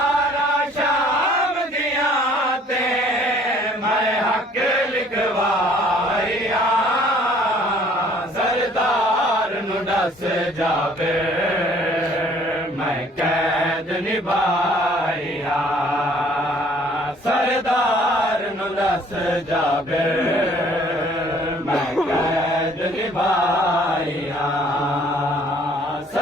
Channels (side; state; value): both; normal; correlation 0.57